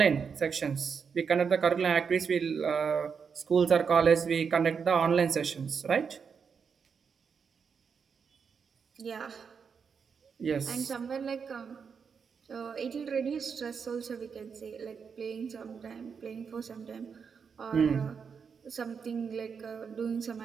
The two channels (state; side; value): quieter; left; 6.2 dB